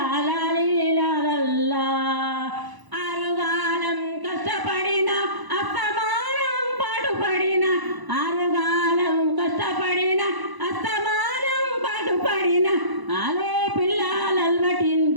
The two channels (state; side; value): late; left; 1.0 ms